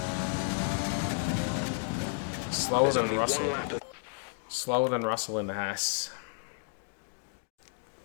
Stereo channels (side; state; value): right; silent; 56 dB below the other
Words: Slower than Russell. Slower than Russell in the Haas.